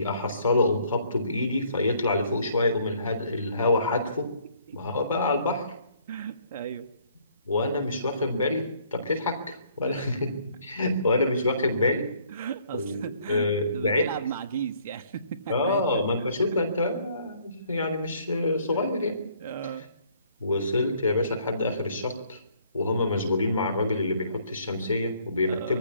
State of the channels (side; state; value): both; inverted; correlation -0.63